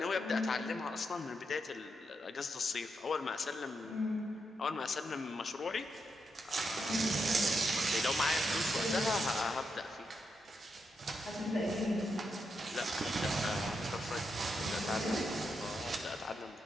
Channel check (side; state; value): both; normal; correlation 0.83